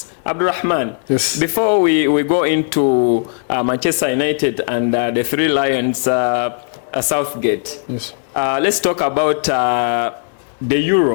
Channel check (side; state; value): right; silent; digital silence